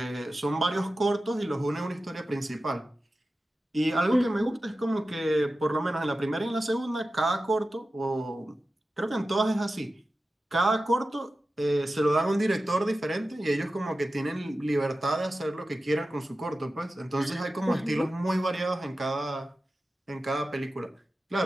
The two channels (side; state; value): both; normal; correlation 0.94